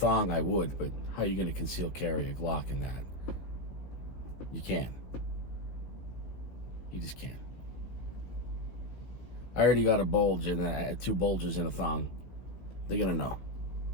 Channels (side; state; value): right; late; 16 ms